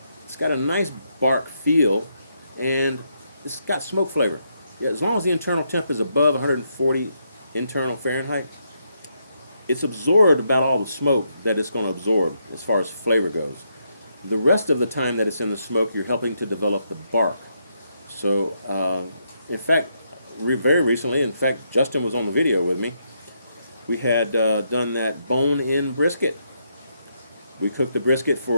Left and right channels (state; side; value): inverted; both; correlation -0.79